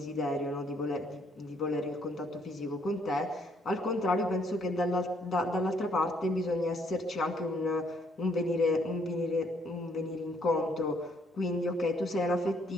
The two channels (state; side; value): normal; both; correlation 0.68